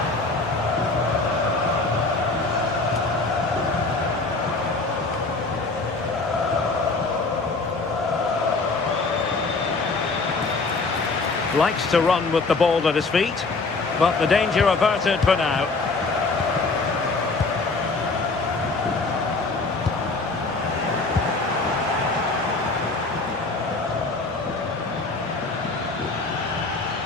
Likes to run with the ball at his feet, but the danger averted for now.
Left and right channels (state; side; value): quieter; right; 3.7 dB